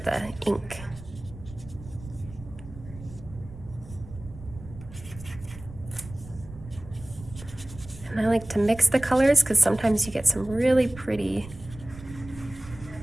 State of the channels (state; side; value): noise; right; rumble, 16 dB below the sound